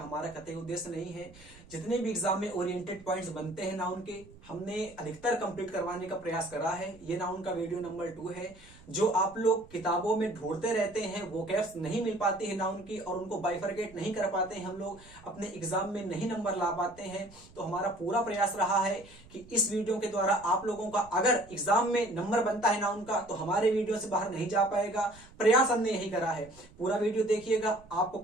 हमारा कतई उद्देश्य नहीं है। जितने भी एग्जाम में ओरिएंटेड पॉइंट्स बनते हैं नाउन के, हमने अधिकतर कंप्लीट करवाने का प्रयास करा है। ये नाउन का वीडियो नंबर 2 है। जो आप लोग किताबों में ढूंढते रहते हैं, वो कैप्स नहीं मिल पाती है नाउन की और उनको बाइफरकेट नहीं कर पाते हैं, हम लोग अपने एग्जाम में नहीं नंबर ला पाते हैं। तो हमारा पूरा प्रयास रहा है कि इस वीडियो के द्वारा आप लोगों का अगर एग्जाम में नंबर बनता है नाउन का, तो हमारे वीडियो से बाहर नहीं जा पाएगा। प्रयास हमने यही करा है। पूरा वीडियो देखिएगा। आपको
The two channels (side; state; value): right; noise; rumble, 23 dB below the sound